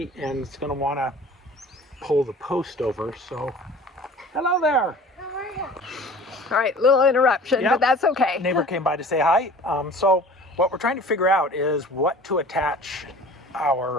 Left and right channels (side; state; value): both; normal; correlation 0.44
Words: and it's going to want to pull the post over. So, hello there. How are you? All right, little interruption, Yep. but that's okay. Neighbor came by to say hi. So what we're trying to figure out is what to attach